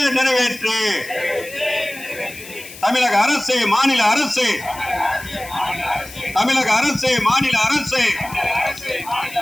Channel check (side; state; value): left; noise; hiss, 16 dB below the sound